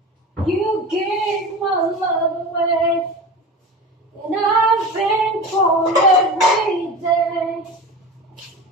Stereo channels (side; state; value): both; normal; correlation 0.30